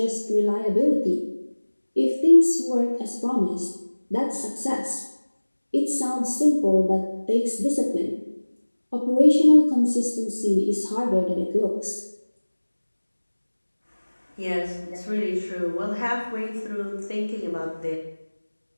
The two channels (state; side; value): inverted; both; correlation -1.00